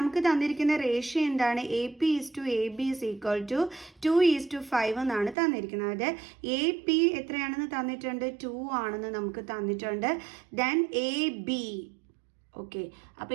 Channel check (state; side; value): drops out; left; at 5.4 s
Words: തന്നിരിക്കുന്ന റേഷ്യോ എന്താണ്, A P is to A B is equal to 2:5 എന്നാണ് തന്നിരിക്കുന്നത്. എ പി എത്രയാണെന്ന് തന്നിട്ടുണ്ട്, 2 ആണെന്ന് നമുക്ക് തന്നിട്ടുണ്ട്. ദെൻ എ ബി, ഓക്കെ, അപ്പോൾ